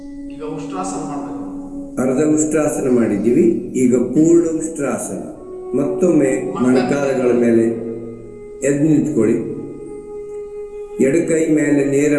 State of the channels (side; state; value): both; identical; correlation 1.00